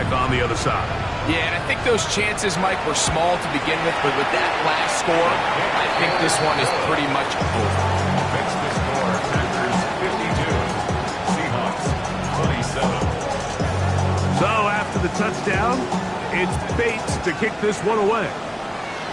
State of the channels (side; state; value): both; identical; correlation 1.00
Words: on the other side. Yeah, and I think those chances, Mike, were small to begin with, but with that last score, I think this one is pretty much over. Fix the score. Packers 52. Seahawks 27. So after the touchdown, it's Bates to kick this one away.